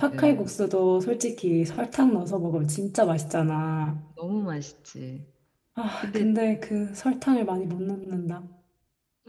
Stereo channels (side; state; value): both; identical; correlation 1.00